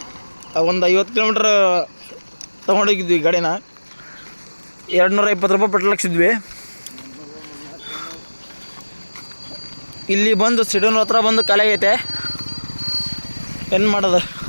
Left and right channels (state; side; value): inverted; both; correlation -1.00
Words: ಒಂದು 50 ಕಿಲೋಮೀಟ್ರ್ ತೊಗೊಂಡೋಗಿದ್ವಿ ಗಾಡಿನ. 220 ರೂಪಾಯಿ ಪೆಟ್ರೋಲ್ ಹಾಕ್ಸಿದ್ವಿ. ಇಲ್ಲಿ ಬಂದು ಸಿಡೋನ್ ಹತ್ರ ಬಂದು ಖಾಲಿ ಆಗೈತೆ. ಏನು ಮಾಡೋದು,